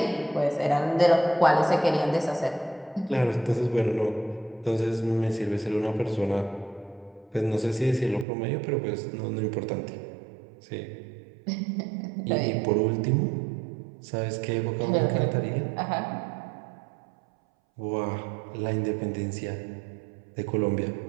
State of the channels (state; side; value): drops out; left; at 8.2 s